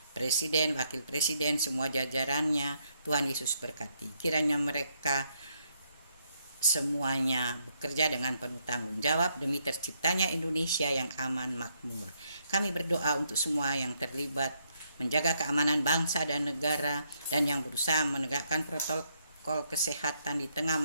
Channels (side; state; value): both; inverted; correlation -0.75